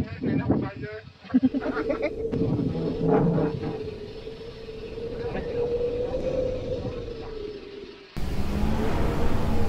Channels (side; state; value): both; identical; correlation 1.00